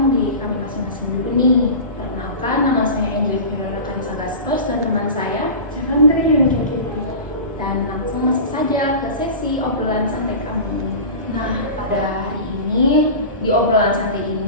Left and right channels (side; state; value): both; inverted; correlation -0.32